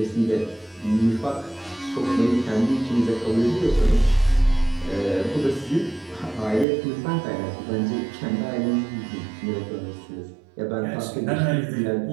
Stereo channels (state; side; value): drops out; left; at 6.7 s